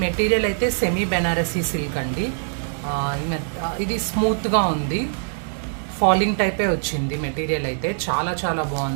మెటీరియల్ అయితే సెమీ బెనారసీ సిల్క్ అండి. ఇది స్మూత్గా ఉంది, ఫాలింగ్ టైపే వచ్చింది మెటీరియల్ అయితే. చాలా చాలా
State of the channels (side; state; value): left; silent; digital silence